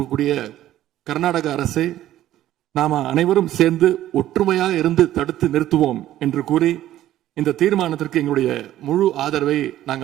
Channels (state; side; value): quieter; left; 13.3 dB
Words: கர்நாடக அரசை நாம அனைவரும் சேர்ந்து ஒற்றுமையாக இருந்து தடுத்து நிறுத்துவோம் என்று கூறி இந்த தீர்மானத்திற்கு எங்களுடைய முழு ஆதரவை